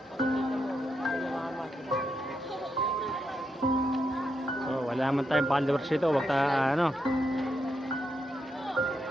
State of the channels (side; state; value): both; normal; correlation 0.82